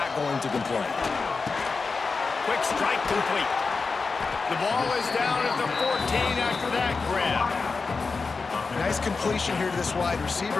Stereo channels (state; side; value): quieter; right; 4.5 dB